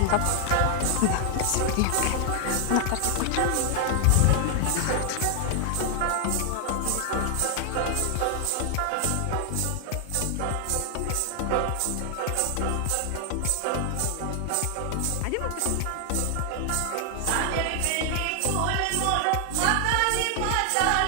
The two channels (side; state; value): both; different; correlation 0.00